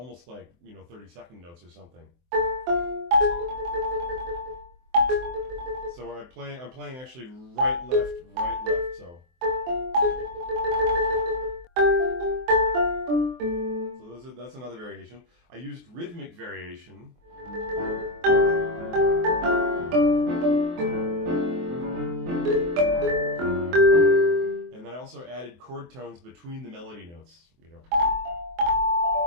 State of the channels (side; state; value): left; late; 23 ms